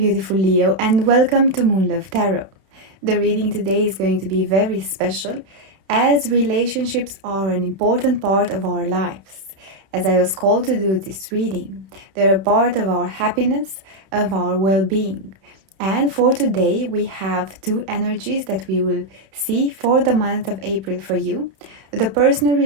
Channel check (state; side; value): late; left; 31 ms